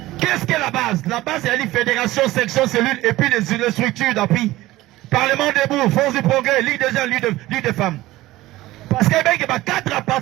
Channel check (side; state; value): left; quieter; 17.3 dB